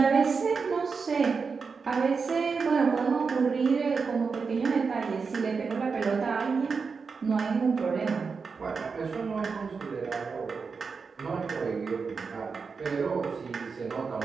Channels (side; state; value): left; quieter; 5.1 dB